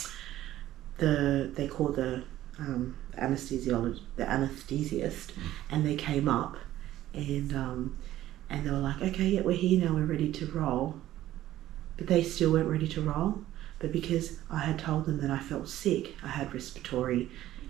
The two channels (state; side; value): quieter; left; 13.9 dB